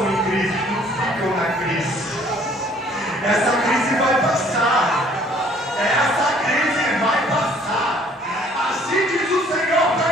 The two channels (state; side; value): normal; both; correlation 0.58